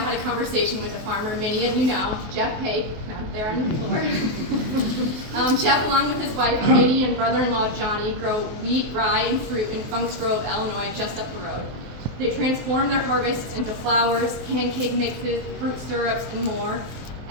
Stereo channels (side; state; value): left; late; 23 ms